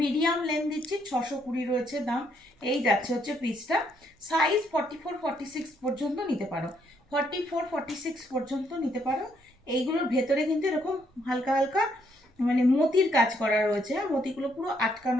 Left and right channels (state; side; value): normal; both; correlation 0.72